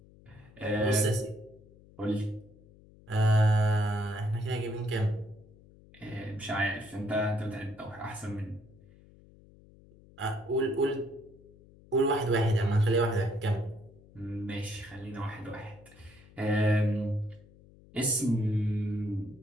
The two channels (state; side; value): noise; left; hum, 24 dB below the sound